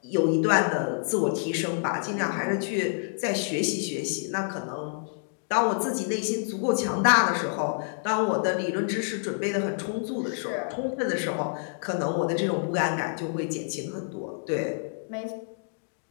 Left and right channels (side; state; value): right; silent; digital silence